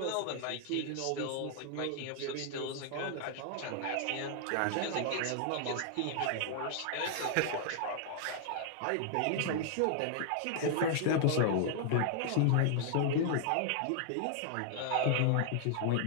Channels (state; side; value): different; both; correlation 0.00